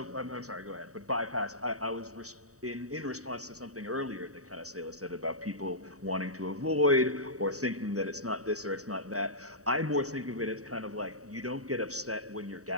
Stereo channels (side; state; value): left; late; 0.66 ms